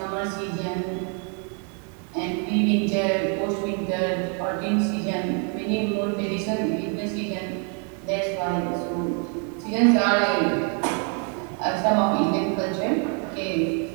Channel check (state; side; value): quieter; left; 40.0 dB